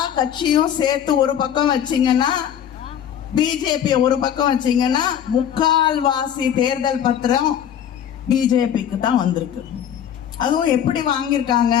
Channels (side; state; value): right; quieter; 9.5 dB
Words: கட்சியும் சேர்த்து ஒரு பக்கம் வச்சீங்கன்னா, பிஜேபி ஒரு பக்கம் வச்சீங்கன்னா, முக்கால்வாசி தேர்தல் பத்திரம் பிஜேபிக்கு தான் வந்திருக்கு. அதுவும் எப்படி வாங்கியிருக்காங்க?